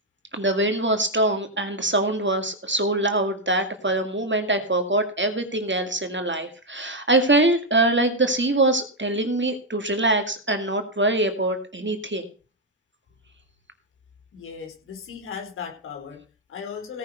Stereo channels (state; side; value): normal; both; correlation 0.01